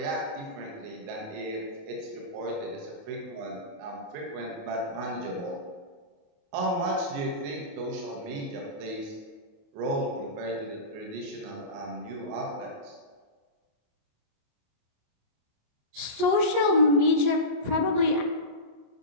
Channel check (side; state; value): left; late; 28 ms